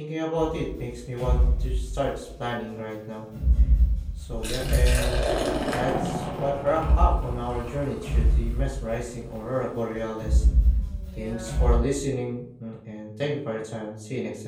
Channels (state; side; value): identical; both; correlation 1.00